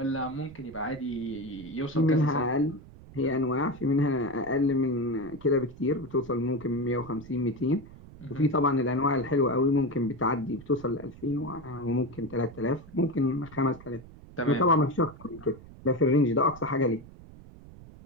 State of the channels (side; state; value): right; noise; rumble, 19 dB below the sound